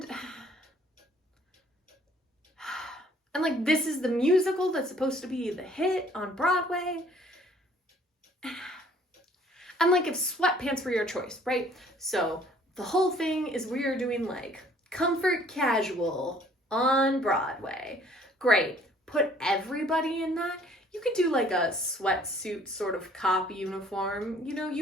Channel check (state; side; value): normal; both; correlation 0.58